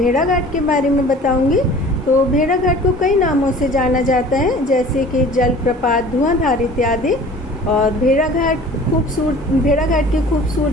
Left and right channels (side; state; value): both; normal; correlation 0.45